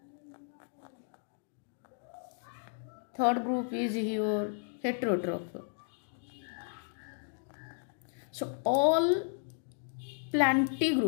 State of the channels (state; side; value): silent; right; digital silence